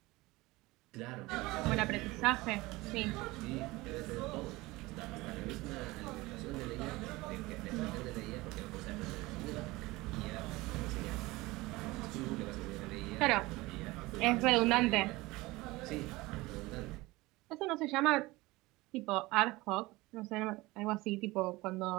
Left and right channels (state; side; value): quieter; left; 20.9 dB